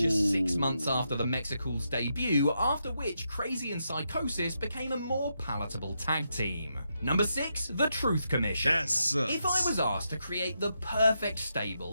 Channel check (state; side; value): inverted; both; correlation -0.83